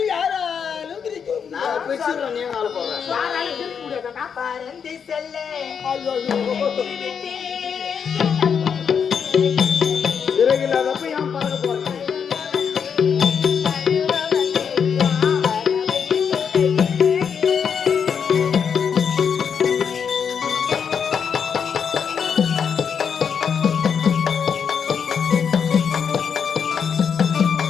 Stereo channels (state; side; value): quieter; right; 7.0 dB